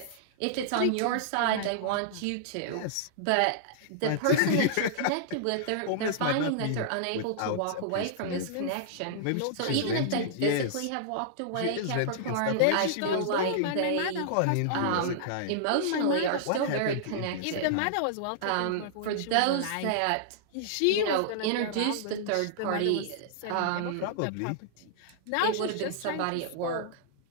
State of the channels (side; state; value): both; different; correlation -0.01